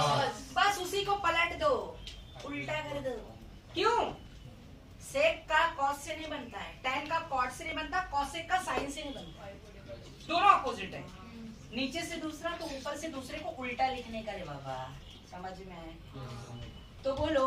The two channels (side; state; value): both; identical; correlation 1.00